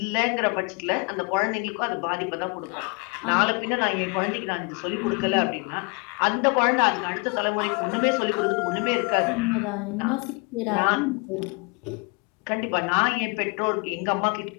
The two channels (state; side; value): quieter; right; 31.6 dB